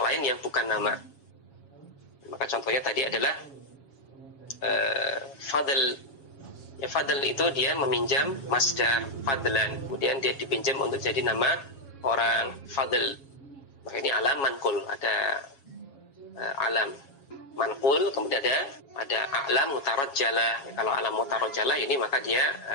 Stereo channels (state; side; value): late; right; 7.3 ms